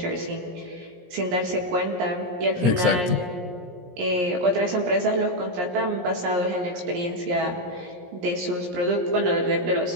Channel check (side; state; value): left; late; 17 ms